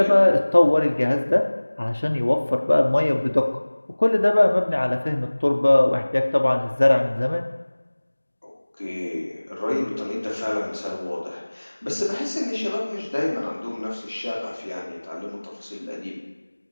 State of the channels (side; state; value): both; inverted; correlation -1.00